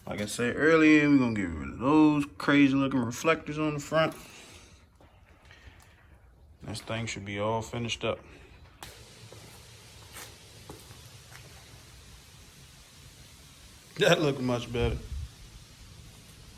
Like I said earlier, we're gonna get rid of those crazy looking reflectors on the front. This thing should be all finished up. That looked much better.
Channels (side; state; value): both; identical; correlation 1.00